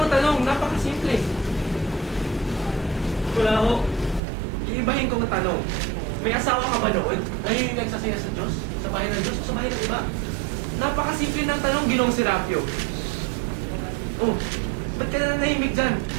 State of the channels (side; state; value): left; drops out; at 4.2 s